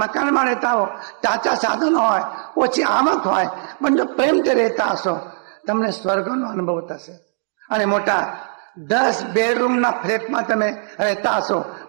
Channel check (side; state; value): left; silent; digital silence